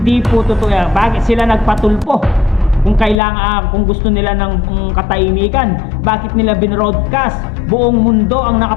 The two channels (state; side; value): drops out; right; at 3.2 s